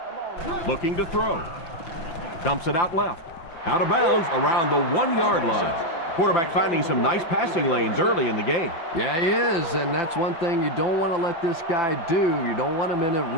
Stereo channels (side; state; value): right; late; 5.9 ms